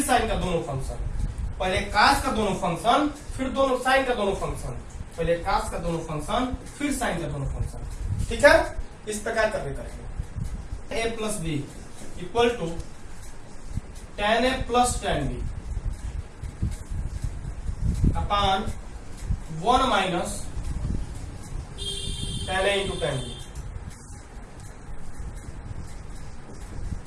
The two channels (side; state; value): both; identical; correlation 1.00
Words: साइन का दोनों फंक्शन, पहले कॉस का दोनों फंक्शन फिर दोनों साइन का दोनों फंक्शन, पहले कॉस का दोनों फंक्शन फिर साइन का दोनों फंक्शन, ठीक है। इस प्रकार करके करेंगे। A plus B equal to tan a plus tan b upon 1 minus tan a into tan b।